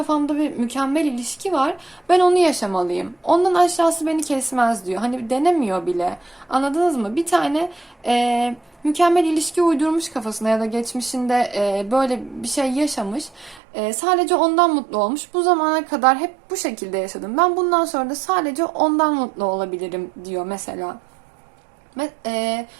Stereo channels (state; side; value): drops out; left; at 13.6 s